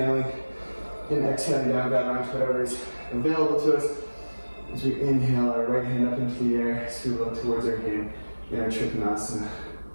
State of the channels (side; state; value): both; inverted; correlation -1.00